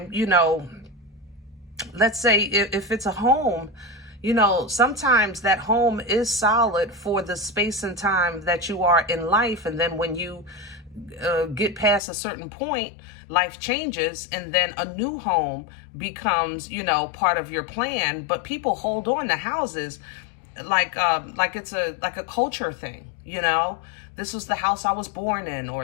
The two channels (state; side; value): drops out; right; at 12.0 s